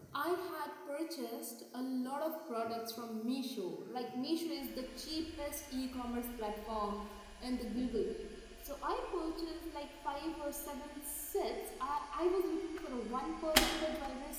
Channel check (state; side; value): identical; both; correlation 1.00